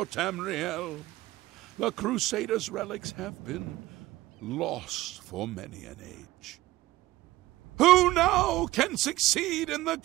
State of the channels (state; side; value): quieter; left; 17.4 dB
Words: Tamriel, the Crusader's relics have been lost for many an age. Who now can succeed in the